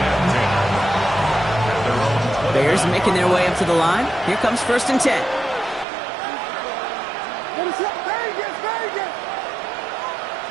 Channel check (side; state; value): left; drops out; at 5.9 s